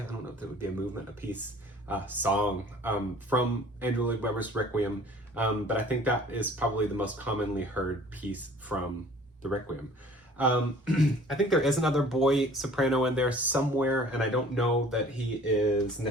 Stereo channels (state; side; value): normal; both; correlation 0.50